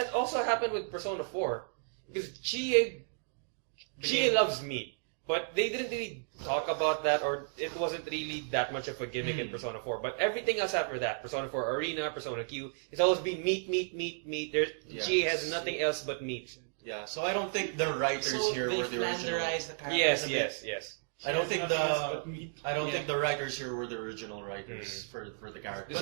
also happened with Persona 4 because Chie loves meat, but they didn't really talk about that, or it wasn't really that much of a gimmick in Persona 4. But everything else after that, Persona 4 Arena, Persona Q, it's always been meat, meat, meat, meat. Chie has nothing else but meat. Yeah, so I don't think the writers So here they were the original. flanderized the characters Yes, a yes, bit. yes. I don't think the Yeah. think the writers here were the original writers for the characters.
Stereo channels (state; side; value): silent; left; digital silence